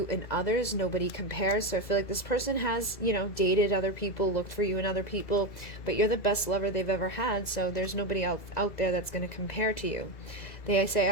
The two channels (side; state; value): right; late; 2.0 ms